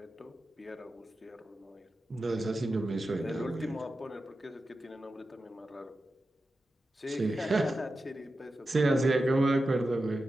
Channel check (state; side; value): normal; both; correlation 0.91